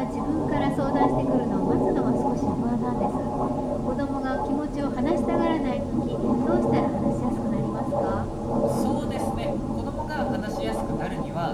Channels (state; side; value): identical; both; correlation 1.00